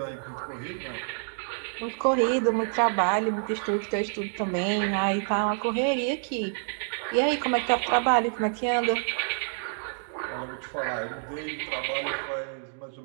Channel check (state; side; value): silent; left; 59 dB below the other